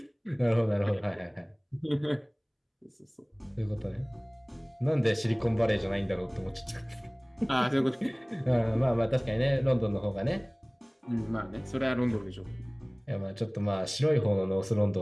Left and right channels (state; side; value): identical; both; correlation 1.00